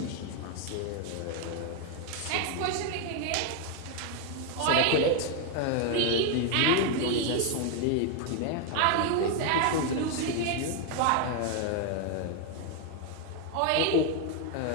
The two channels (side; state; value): both; different; correlation 0.01